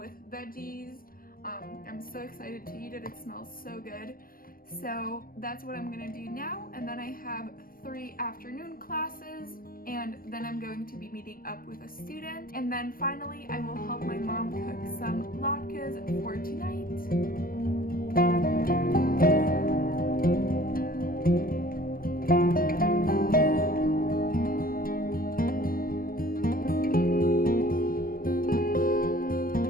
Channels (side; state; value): right; late; 0.42 ms